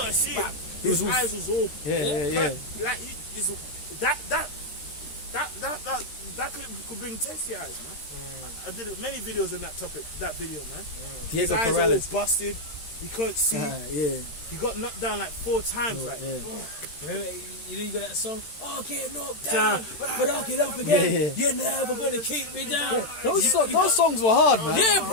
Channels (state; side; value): late; right; 13 ms